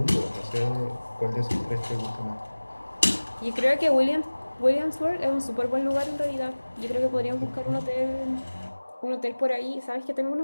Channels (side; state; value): both; inverted; correlation -1.00